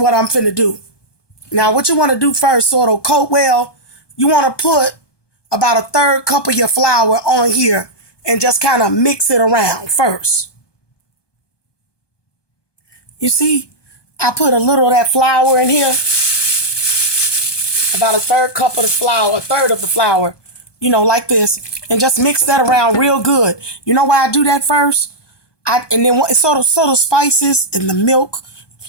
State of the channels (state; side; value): late; right; 1.2 ms